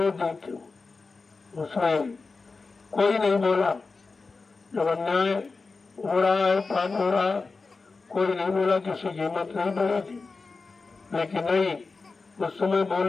देखते हो, उसमें कोई नहीं बोला। जब अन्याय हो रहा है, पाप हो रहा, कोई नहीं बोला, किसी की हिम्मत नहीं बढ़ी थी। लेकिन नहीं, उस समय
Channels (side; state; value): right; quieter; 4.1 dB